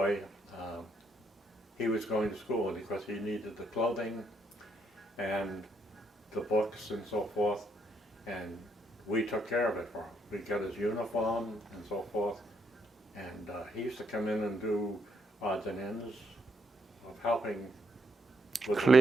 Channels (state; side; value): normal; both; correlation 0.76